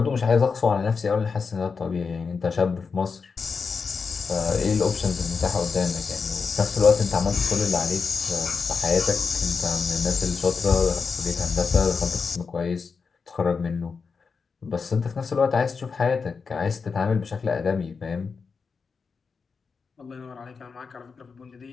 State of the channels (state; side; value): quieter; right; 5.2 dB